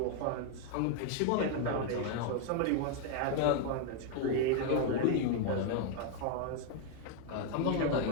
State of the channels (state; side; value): different; both; correlation 0.00